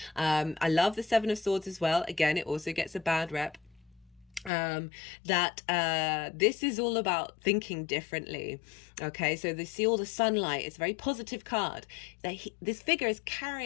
I love the Seven of Swords as well. Again, it also gets a bad rep. This is all about thinking differently. Okay, so they see all the sunlight. It's a very positive card. This figure is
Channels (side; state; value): right; drops out; at 4.5 s